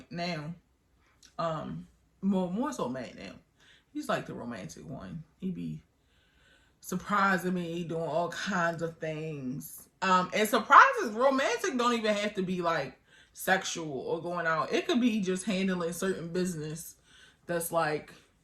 now. More so Matt now. He's like the romantic one. He be surprising me, doing all kinds of things. And surprises, romantic don't even have to be like sexual or going out. It could be just handling certain business that's like,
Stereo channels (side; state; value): both; identical; correlation 1.00